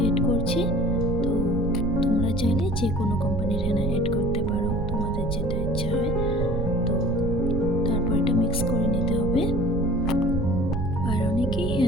করছি। তো তোমরা চাইলে যে কোনো কোম্পানির হেনা অ্যাড করতে পারো, তোমাদের যেটা ইচ্ছা হয়। তো তারপর এটা মিক্স করে নিতে হবে। আর অনেকেই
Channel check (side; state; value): right; noise; rumble, 2 dB below the sound